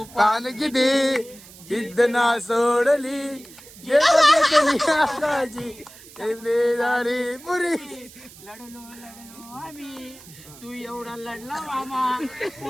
पान किती जिद्द ना सोडली. जे बघितली आकाशी झाली पुरी. लढलो आम्ही तू एवढा लढला मामा.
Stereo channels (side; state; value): right; noise; hiss, 20 dB below the sound